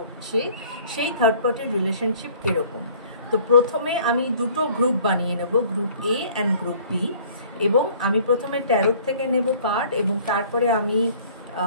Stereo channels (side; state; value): both; inverted; correlation -0.53